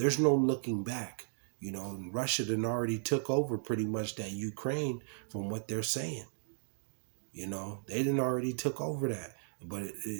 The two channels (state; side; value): silent; left; digital silence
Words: no looking back. And Russia done already took over pretty much that Ukraine, from what they're saying. They done already took over that. But